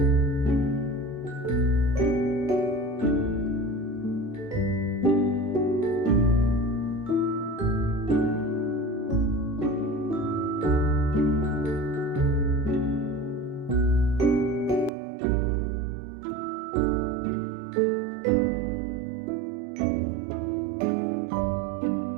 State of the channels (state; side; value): drops out; left; at 14.9 s